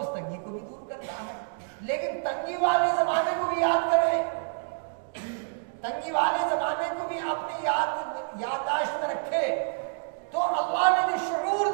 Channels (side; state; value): left; silent; digital silence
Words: تنگی کو بھی دور کرتا ہے۔ لیکن تنگی والے زمانے کو بھی یاد کریں، تنگی والے زمانے کو بھی اپنی یادداشت میں رکھے، تو اللہ نے جو شعور